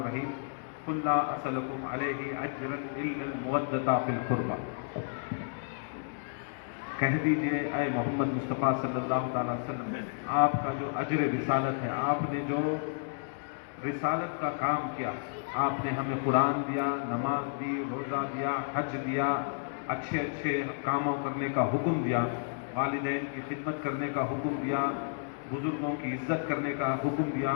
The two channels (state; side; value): silent; right; digital silence